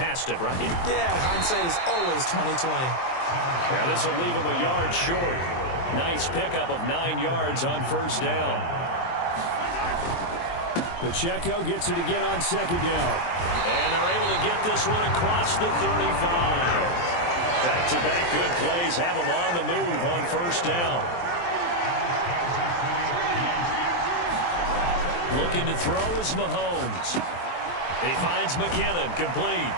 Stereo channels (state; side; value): late; right; 23 ms